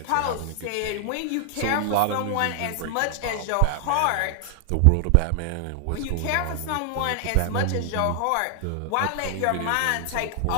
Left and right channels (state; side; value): different; both; correlation 0.00